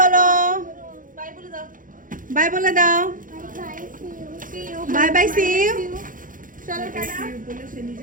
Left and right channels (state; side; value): late; left; 0.39 ms